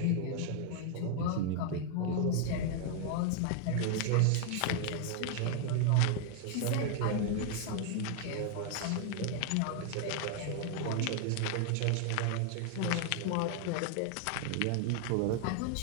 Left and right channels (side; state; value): both; different; correlation 0.00